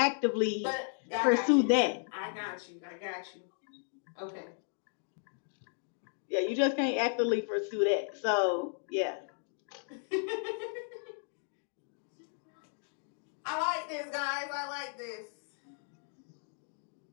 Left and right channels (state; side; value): silent; right; 55 dB below the other